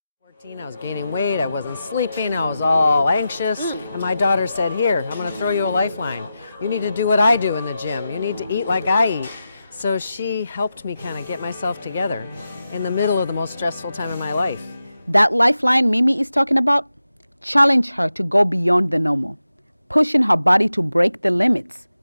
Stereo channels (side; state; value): both; inverted; correlation -0.91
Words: 14, I was gaining weight, I wasn't sleeping, I was all anxious, and my daughter said, "Here, I'm going to throw you a lifeline. You need to do what I do in the gym. You need to eat like I eat." So she helped me kind of get myself together in the middle of the most stressful time of my life. That lifeline Mimi is talking about challenged her to go beyond the normal, pushing her body to break the limits